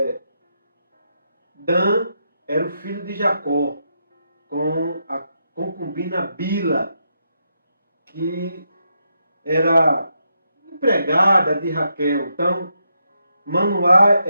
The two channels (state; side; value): inverted; both; correlation -0.82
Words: Dan era o filho de Jacó com a concubina Bila, que era empregada de Raquel. Então, Manoá